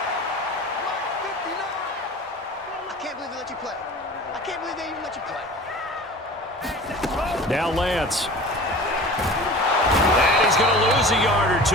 Now Lance. And he's going to lose a yard or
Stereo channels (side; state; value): both; normal; correlation 0.39